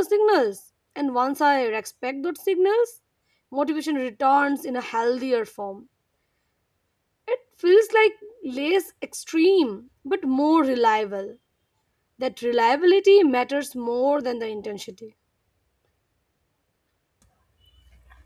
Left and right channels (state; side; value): identical; both; correlation 1.00